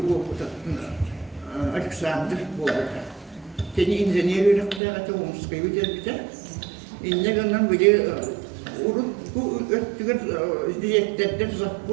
Alexander boleh. Jadi engineer rakta atau umskai kita ini kan video urut tu tiga dia terder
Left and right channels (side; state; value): left; drops out; at 4.8 s